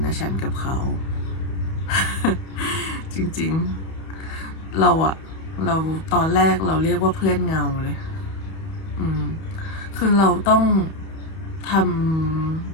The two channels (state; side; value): late; right; 31 ms